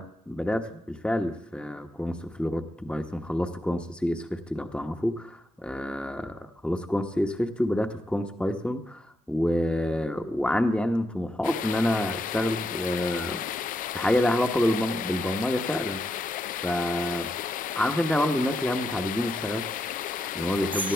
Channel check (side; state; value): both; normal; correlation 0.83